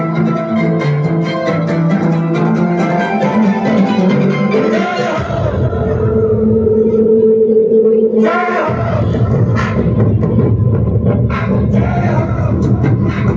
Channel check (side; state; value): both; identical; correlation 1.00